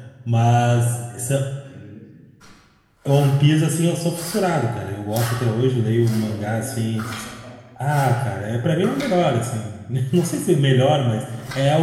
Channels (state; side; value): identical; both; correlation 1.00